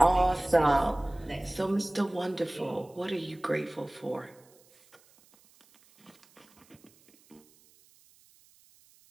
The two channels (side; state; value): right; noise; hiss, 30 dB below the sound